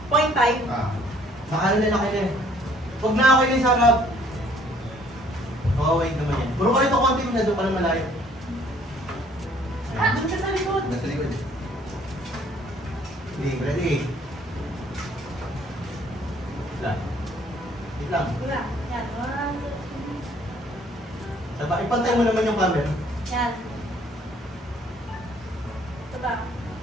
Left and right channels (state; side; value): normal; both; correlation 0.60